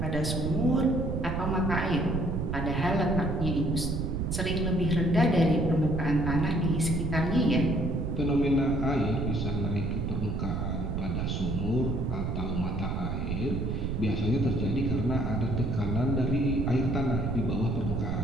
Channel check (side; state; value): right; noise; rumble, 1 dB below the sound